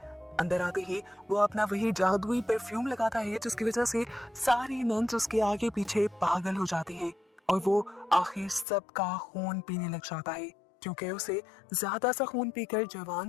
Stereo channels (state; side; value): drops out; right; at 8.7 s